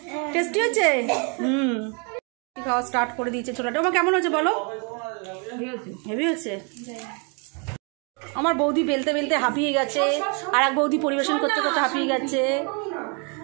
টেস্টি হচ্ছে? খাওয়া স্টার্ট করে দিয়েছে ছোলার ডাল। কেমন হচ্ছে বলো? হেভি হচ্ছে। আমার বৌদি বেলতে বেলতে হাঁপিয়ে গেছে, আর এক বৌদি পরিবেশন করতে করতে হাঁপিয়ে গেছে।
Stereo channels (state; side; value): quieter; left; 35.4 dB